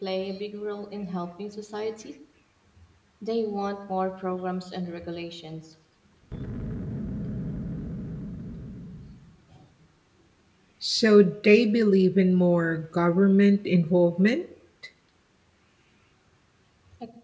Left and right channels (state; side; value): identical; both; correlation 1.00